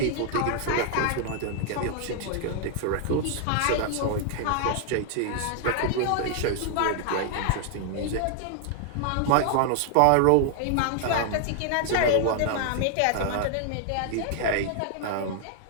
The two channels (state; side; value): different; both; correlation 0.00